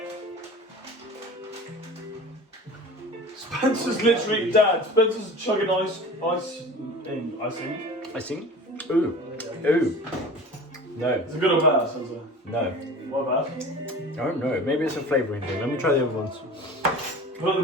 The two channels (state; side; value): normal; both; correlation 0.38